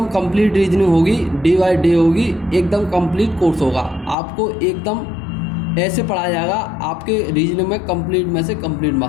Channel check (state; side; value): drops out; right; at 4.2 s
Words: कंप्लीट रीजनिंग होगी, डे बाय डे होगी, एकदम कंप्लीट कोर्स होगा। आपको एकदम ऐसे पढ़ाया जाएगा, आपके रीजनिंग में कंप्लीट में से कंप्लीट